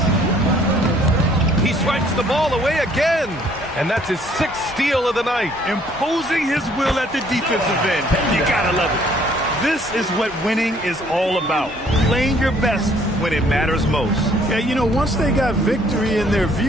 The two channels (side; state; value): both; normal; correlation 0.61